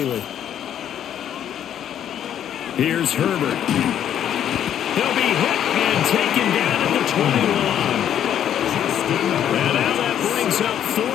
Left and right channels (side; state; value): right; quieter; 10.1 dB